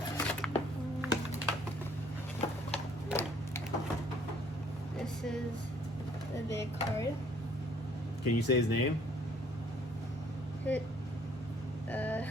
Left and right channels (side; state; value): both; normal; correlation 0.60